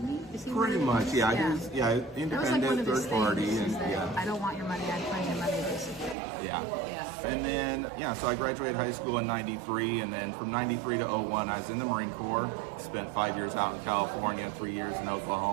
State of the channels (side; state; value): left; drops out; at 6.2 s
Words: he? Is he Pretty one of much, those? yeah. Yeah. He was, yeah, That was like independent, one of his third party, things, and is that yeah. I don't want your money, I claim your money, basically. Yeah. Yeah. And then, yeah, so I graduated high school in 93, and then from 93 to 01, I was in the Marine Corps, spent 5 years out in California, 3 years in